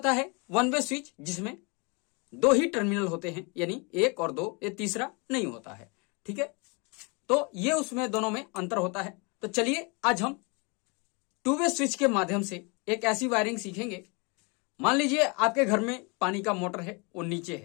है वन वे स्विच जिसमें 2 ही टर्मिनल होते हैं, यानी 1 और 2, ये तीसरा नहीं होता है। ठीक है, तो ये उसमें दोनों में अंतर होता है। तो चलिए आज हम टू वे स्विच के माध्यम से एक ऐसी वायरिंग सीखेंगे। मान लीजिए आपके घर में पानी का मोटर है, वो नीचे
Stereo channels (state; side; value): quieter; right; 31.3 dB